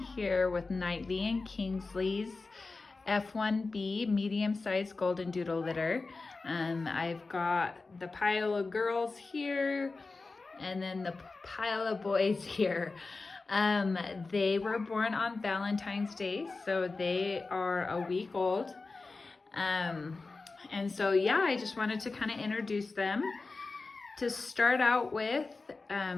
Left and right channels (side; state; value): right; quieter; 3.8 dB